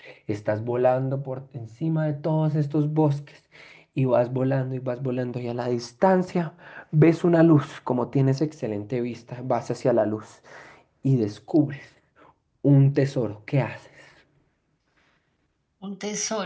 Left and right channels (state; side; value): identical; both; correlation 1.00